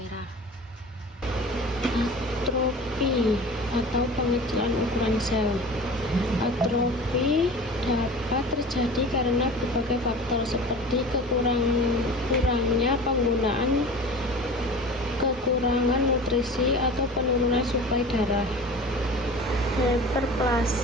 Atrofi atau pengecilan ukuran sel. Atrofi dapat terjadi karena berbagai faktor seperti kekurangan nutrisi atau penurunan suplai darah.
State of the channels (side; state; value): both; normal; correlation 0.37